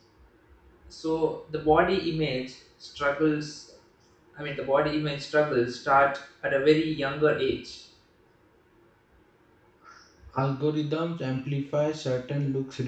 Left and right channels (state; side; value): identical; both; correlation 1.00